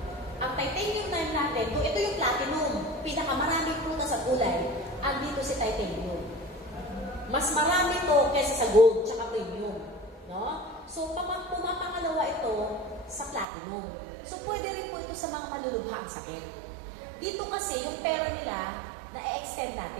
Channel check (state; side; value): drops out; left; at 13.5 s